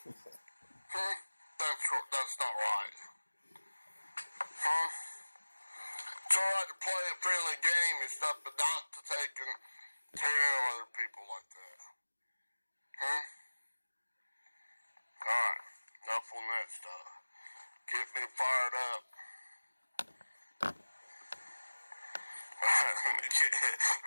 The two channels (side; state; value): both; inverted; correlation -1.00